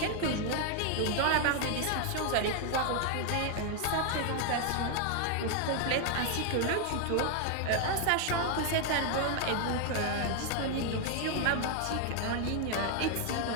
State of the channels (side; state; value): both; different; correlation 0.00